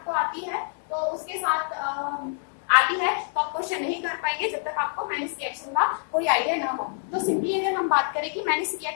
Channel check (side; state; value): right; silent; digital silence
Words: आती है तो उसके साथ आती है तो आप क्वेश्चन नहीं कर पाएंगे जब तक आपको मैरिस रिएक्शन का कोई आइडिया ना हो। तो सिंपली अगर हम बात करें कि मैरिस